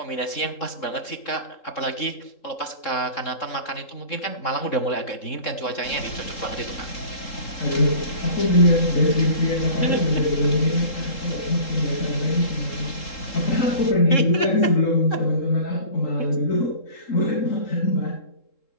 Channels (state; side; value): late; right; 3.7 ms